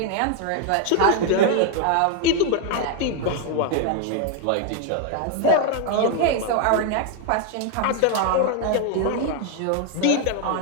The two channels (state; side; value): different; both; correlation 0.00